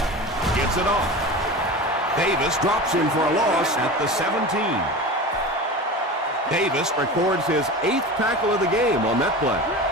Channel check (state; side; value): normal; both; correlation 0.31